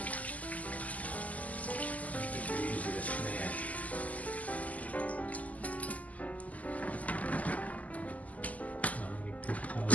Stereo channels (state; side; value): late; right; 0.075 ms